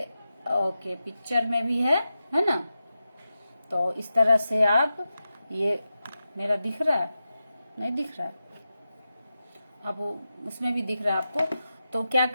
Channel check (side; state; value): both; inverted; correlation -0.91